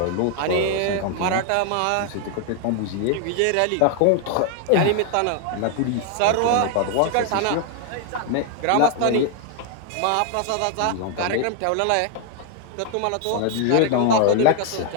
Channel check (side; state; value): both; different; correlation 0.00